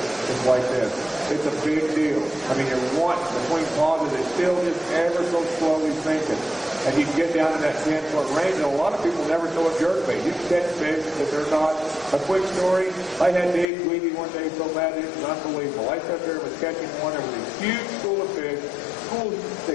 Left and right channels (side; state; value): right; drops out; at 13.7 s